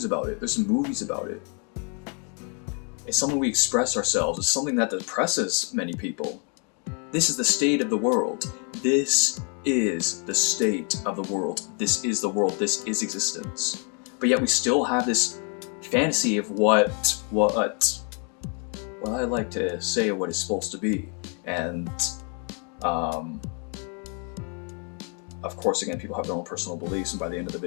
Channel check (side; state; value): right; quieter; 38.5 dB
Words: about it. There's some movies about it. It's something we express ourselves. It's something that depresses many people. This is the state of the world. This is the state of the world. This is the world. This is existence. But yet we still have this fantasy of what I like to say what it's supposed to be. And of course, again, people have their own personal beliefs, and by the end of the